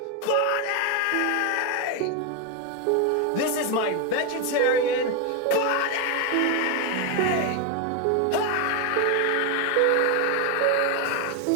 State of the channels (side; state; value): both; different; correlation 0.01